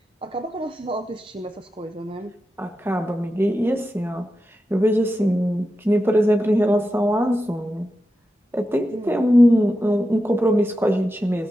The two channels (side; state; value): both; normal; correlation 0.90